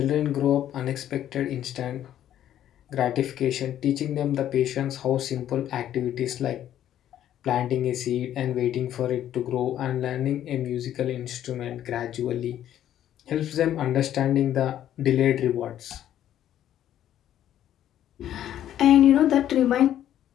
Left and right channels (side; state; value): right; quieter; 11.4 dB